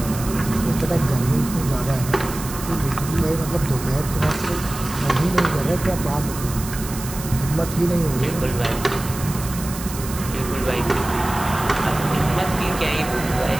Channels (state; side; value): noise; right; hiss, 11 dB below the sound